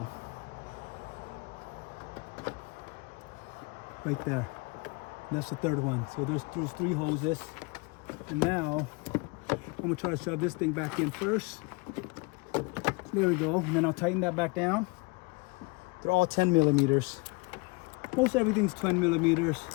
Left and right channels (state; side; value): quieter; right; 28.5 dB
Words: Right there. That's the 3rd one. So there's 3 hoses. And now I'm gonna try to shove this thing back in first. There we go. And then I'll tighten that back down. They're all 10 millimeters. Most everything's 10 millimeters.